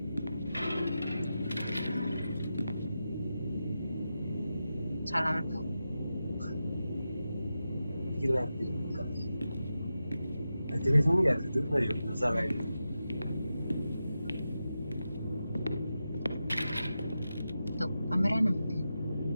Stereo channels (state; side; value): inverted; both; correlation -0.91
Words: Salam tuh. Gila dibuka. Jadi ini gak duduk lah yuk, masalah ini. Tuh, kameranya.